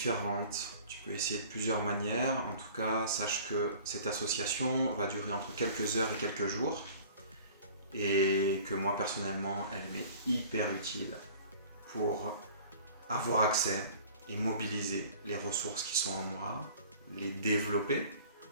Tu peux essayer de plusieurs manières. En tout cas, sache que cette association va durer entre quelques heures et quelques jours et que moi personnellement, elle m'est hyper utile pour avoir accès et mobiliser les ressources qui sont en moi, les développer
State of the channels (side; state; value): both; inverted; correlation -0.47